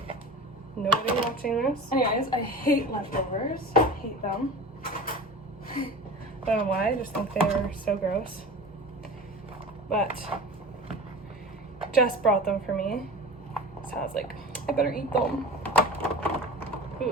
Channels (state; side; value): normal; both; correlation 0.35